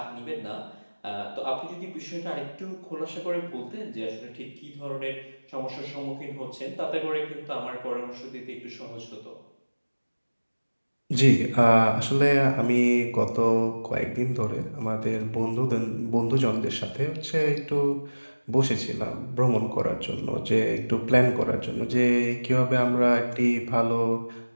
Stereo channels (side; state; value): both; inverted; correlation -1.00